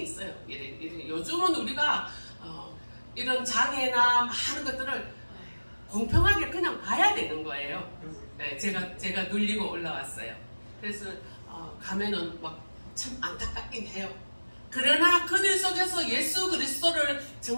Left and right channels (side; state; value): both; inverted; correlation -1.00